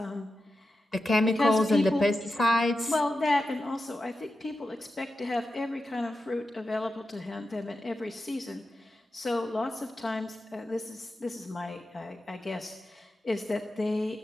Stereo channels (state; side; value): normal; both; correlation 0.90